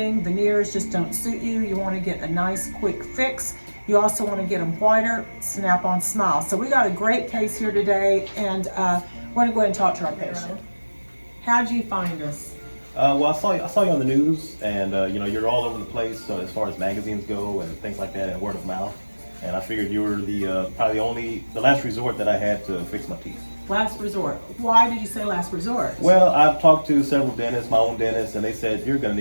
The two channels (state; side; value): inverted; both; correlation -1.00